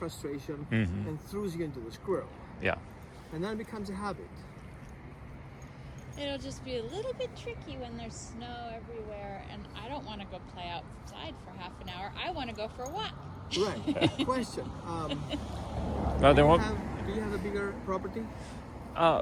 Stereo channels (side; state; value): both; identical; correlation 1.00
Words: and throws you into the squirrel. Yeah. And then it becomes a habit. It'll just be a little bit tricky when there's snow everywhere, and I don't want to go play outside for half an hour. I want to go for a walk. Right. Question. Well, there won't. Do you have a bigger property?